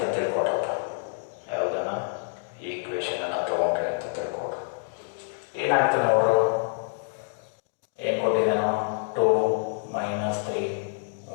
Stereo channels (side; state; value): right; silent; digital silence